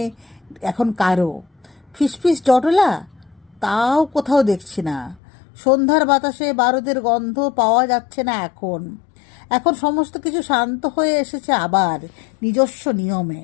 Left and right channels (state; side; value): drops out; right; at 5.2 s